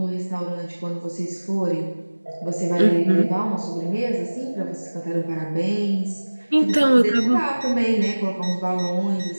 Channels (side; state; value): both; inverted; correlation -1.00